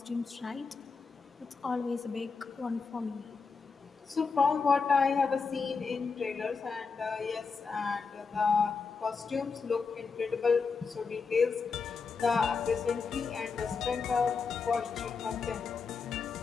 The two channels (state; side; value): quieter; right; 5.0 dB